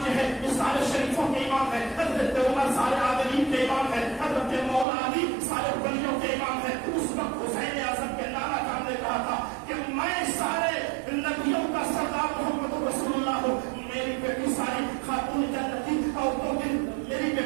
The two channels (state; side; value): drops out; left; at 4.9 s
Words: جو ہے یہ سارے شریفوں کے امام ہے، حضرت عمر سارے عادلین کے امام ہے، حضرت مولا علی سارے ولیوں کے امام ہے۔ اس وقت حسین اعظم کے نعرہ کام نے کہا تھا کہ میں سارے نبیوں کا سردار محمد رسول اللہ ہوں، میری بیٹی ساری خاتون جنتی عورتوں کی، میری